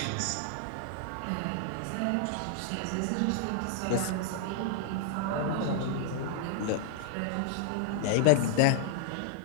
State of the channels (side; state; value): both; different; correlation 0.00